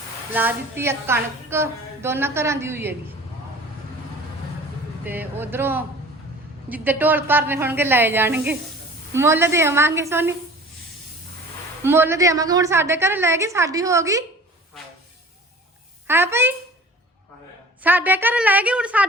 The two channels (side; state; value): both; normal; correlation 0.44